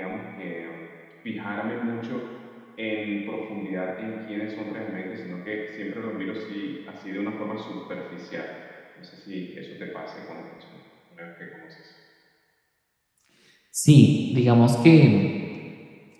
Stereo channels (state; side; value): identical; both; correlation 1.00